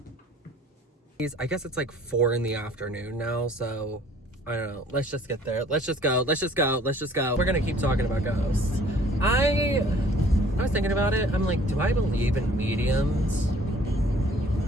I guess it's like 4 in the afternoon now, so I don't know. Let's just get there. Let's just go. We're gonna keep talking about ghosts. I was thinking about it. I'm like, do I believe in mediums?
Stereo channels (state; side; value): normal; both; correlation 0.55